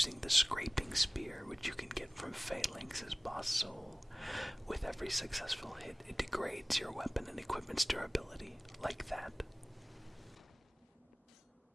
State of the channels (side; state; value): both; normal; correlation 0.97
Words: the scraping spear, which you can get from Phalanx's boss soul. With every successful hit, it degrades your weapon and equipment's durability, like that.